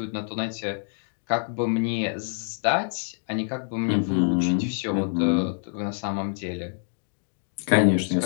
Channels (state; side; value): silent; right; digital silence